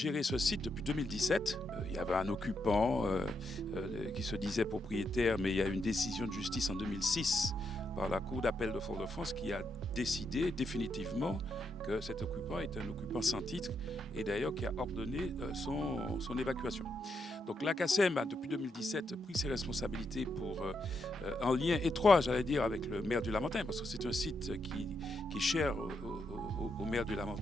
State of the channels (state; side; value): normal; both; correlation 0.81